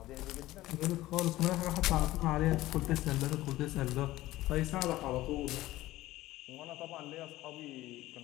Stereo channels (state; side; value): quieter; right; 16.6 dB